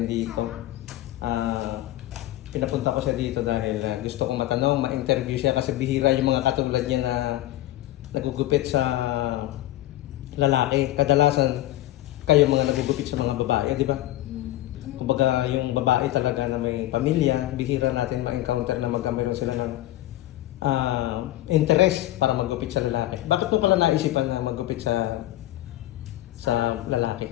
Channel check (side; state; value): right; quieter; 15.3 dB